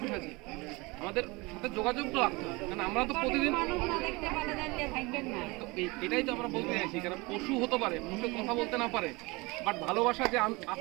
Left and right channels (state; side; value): quieter; left; 24.8 dB